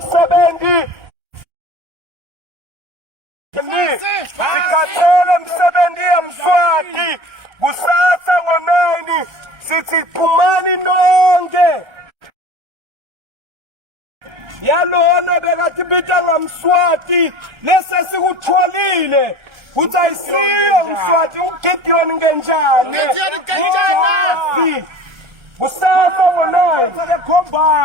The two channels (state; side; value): late; left; 1.4 ms